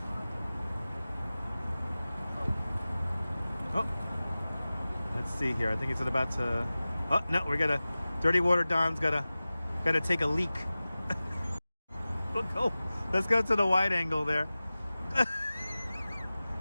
Oh, let's see here. I think it's about to. Oh no, we gotta. Dirty Water Don's gotta take a leak. Let's go to the wide angle there.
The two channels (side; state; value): both; inverted; correlation -0.97